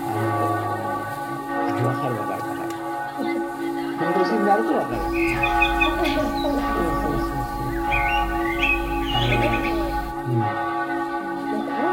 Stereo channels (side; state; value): both; identical; correlation 1.00